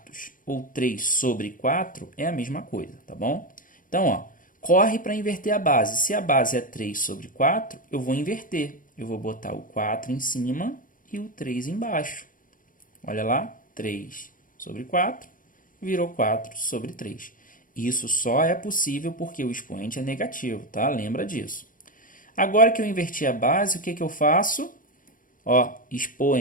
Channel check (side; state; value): right; late; 0.39 ms